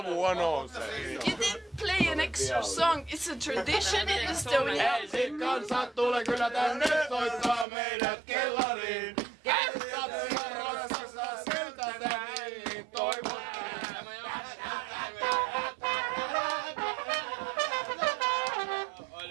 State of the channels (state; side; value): drops out; left; at 7.7 s